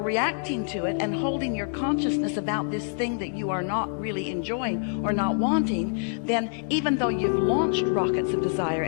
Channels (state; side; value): silent; right; digital silence